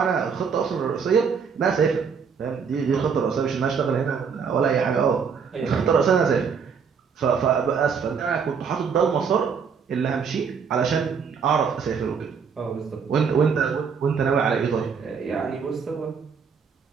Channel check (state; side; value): quieter; left; 6.2 dB